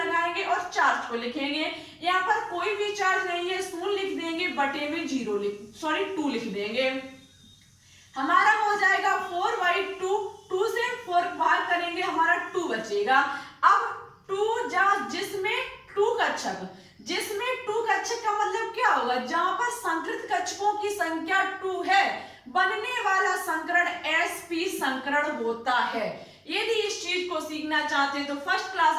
और चार्ज को लिखेंगे। यहाँ पर कोई भी चार्ज नहीं है, 0 लिख देंगे, बटे में 2 लिख देंगे। हमारा हो जाएगा 4/2, 2 से 4 भाग करेंगे हमारा 2 बचेगा। अब 2 जिसमें 2 कक्षक, जिसमें 2 कक्षक का मतलब क्या होगा, जहां पर संकृत कक्षकों की संख्या 2 है बनने वाला संकरण sp संकरण होता है। यदि इस चीज को सीखना चाहते हैं तो फर्स्ट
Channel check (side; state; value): both; identical; correlation 1.00